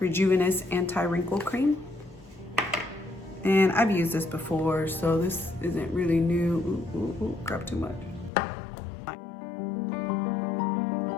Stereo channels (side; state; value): right; drops out; at 8.3 s